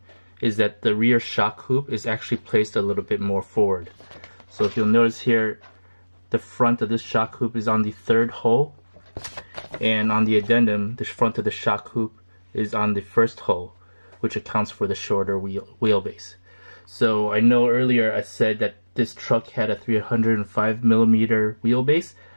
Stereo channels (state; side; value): inverted; both; correlation -1.00